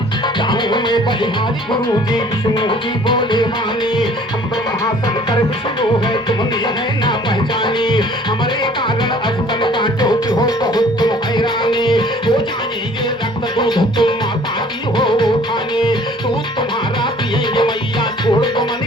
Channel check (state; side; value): normal; both; correlation 0.53